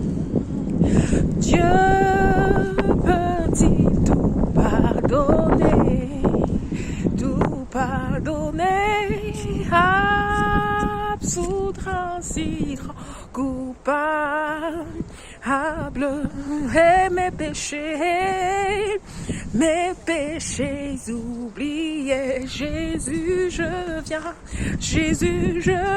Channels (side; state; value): both; identical; correlation 1.00